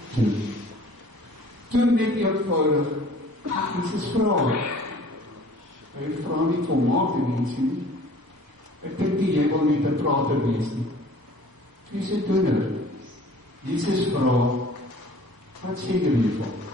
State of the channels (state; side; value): late; left; 1.0 ms